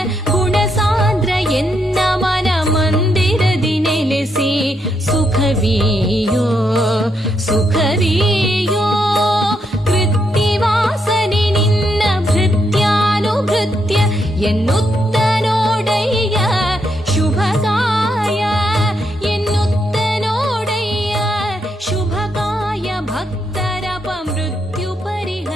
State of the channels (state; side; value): normal; both; correlation 0.79